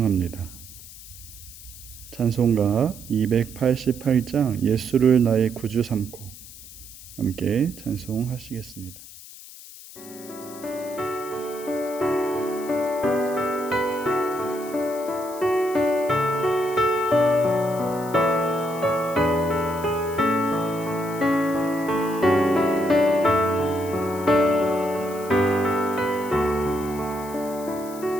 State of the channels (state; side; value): noise; left; hiss, 17 dB below the sound